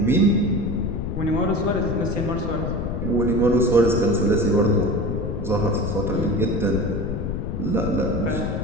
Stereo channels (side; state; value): left; noise; rumble, 3 dB below the sound